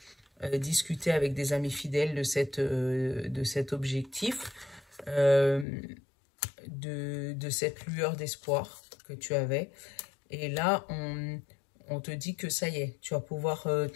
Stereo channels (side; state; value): right; drops out; at 5.7 s